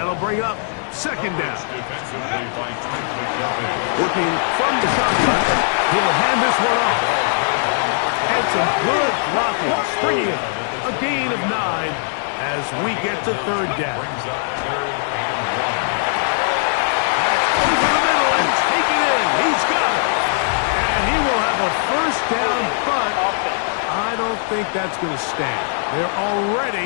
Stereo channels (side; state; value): right; silent; digital silence